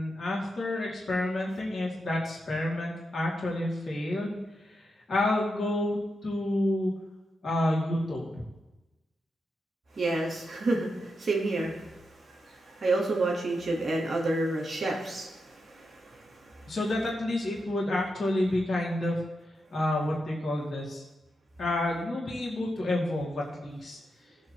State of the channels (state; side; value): normal; both; correlation 0.86